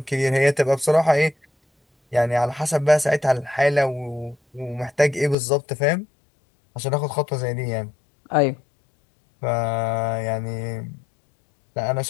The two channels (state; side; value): drops out; right; at 5.4 s